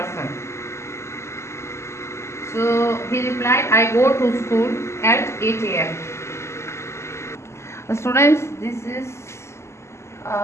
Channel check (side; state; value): right; late; 0.13 ms